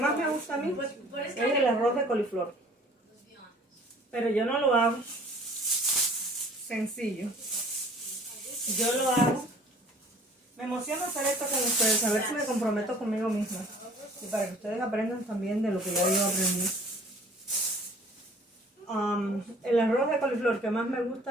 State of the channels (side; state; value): both; normal; correlation 0.51